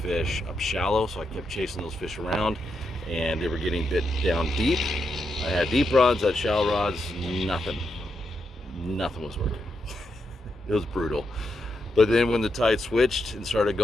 up shallow, so I kept chasing those fish around, and they were getting bit down deep. I had deep rods, I had shallow rods, nothing was working. It was brutal. But then when the tide switched and started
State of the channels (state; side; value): normal; both; correlation 0.83